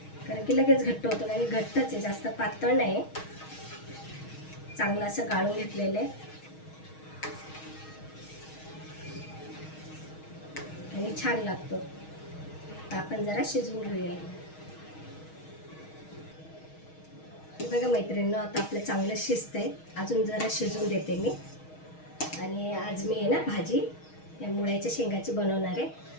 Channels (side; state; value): right; late; 6.4 ms